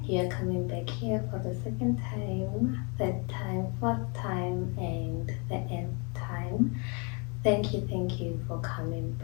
you're coming back here for the second time, third time, fourth time, and the nth time. Thank you for coming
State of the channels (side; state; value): right; quieter; 33.6 dB